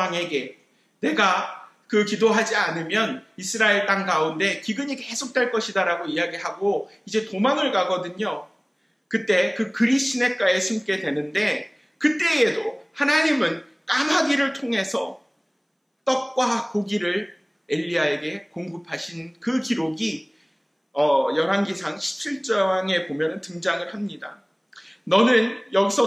내가 그 기도하지 않으면 이스라엘 땅 가운데 기근이 계속될 것이다라고 이야기하고 이제 도망을 가거든요. 그때 그 그리 시냇가에 숨게 되는데 그때에도 하나님은 까마귀를 통해서 떡과 고기를 엘리야에게 공급하신 그 기록이 열왕기상 17장에 보면 등장을 합니다. 너는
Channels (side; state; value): both; identical; correlation 1.00